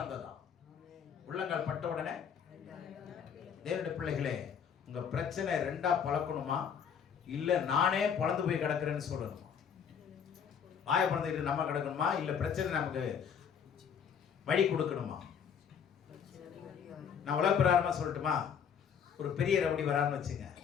உள்ளங்கால் பட்ட உடனே. தேவனுடைய பிள்ளைகளே, உங்க பிரச்சனை ரெண்டா பழக்கணுமா இல்ல நானே பழந்து போய் கிடக்குறேன்னு சொல்லணுமா? வாய பழந்துக்கிட்டு நம்ம கிடக்கணுமா இல்ல பிரச்சனை நமக்கு வழி கொடுக்கணுமா? நான் உலக பிரகாரமா சொல்லட்டுமா? ஒரு பெரிய ரவுடி வரான்னு வச்சுங்க,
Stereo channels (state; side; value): quieter; right; 7.5 dB